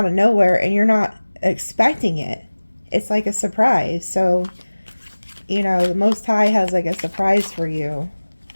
of nowhere and you're not expecting it. It's like a surprise. So, you know, the Most High has like a surprise for you.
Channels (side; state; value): both; inverted; correlation -1.00